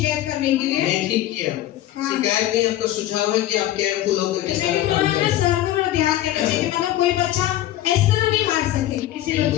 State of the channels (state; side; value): quieter; right; 13.7 dB